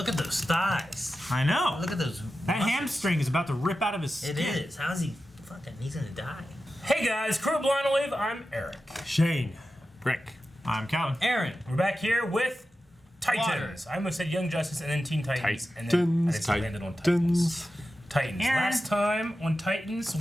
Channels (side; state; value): both; normal; correlation 0.92